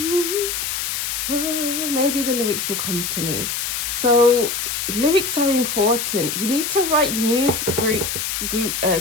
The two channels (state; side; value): noise; left; hiss, 2 dB below the sound